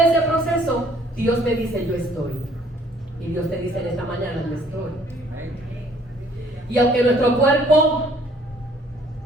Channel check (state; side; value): normal; both; correlation 0.60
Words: ese proceso Dios me dice: yo estoy. Y Dios te dice en esta mañana: yo estoy. Y aunque nuestro cuerpo